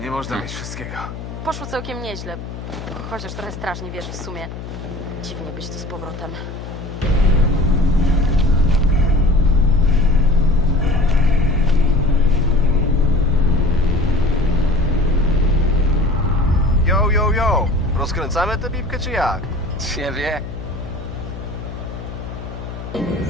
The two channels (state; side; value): noise; left; hum, 10 dB below the sound